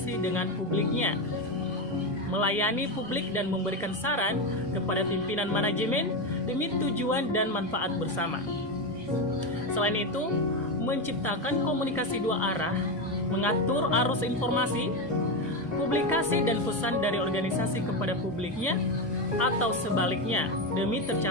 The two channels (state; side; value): normal; both; correlation 0.13